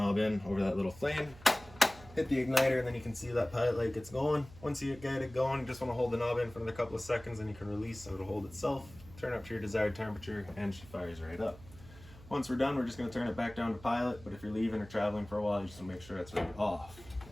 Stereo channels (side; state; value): right; noise; hum, 19 dB below the sound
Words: in over that little flame, hit the igniter, and then you can see that pilot light gets going. Once you get it going, you just want to hold the knob in for another couple of seconds and you can release so it'll hold itself. Turn up to your desired temperature and she fires right up. Once we're done, we're just going to turn it back down to pilot, but if you're leaving or traveling for a while, you just want to make sure that's right off.